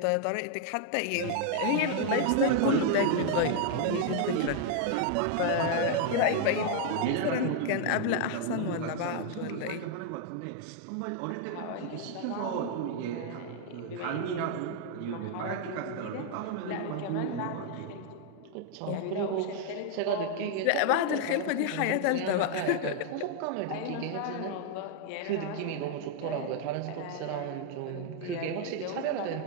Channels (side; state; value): both; different; correlation 0.00